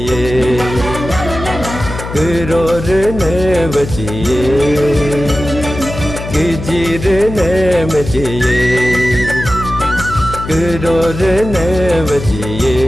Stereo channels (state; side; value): noise; left; hum, 9 dB below the sound